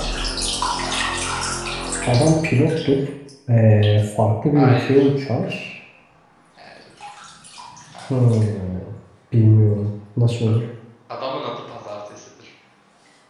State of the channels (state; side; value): identical; both; correlation 1.00